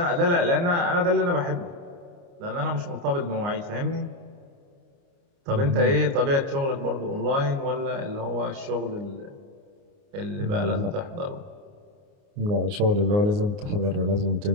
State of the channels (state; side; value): late; left; 29 ms